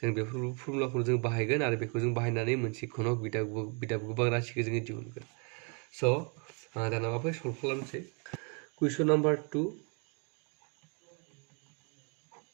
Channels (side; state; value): left; quieter; 36.8 dB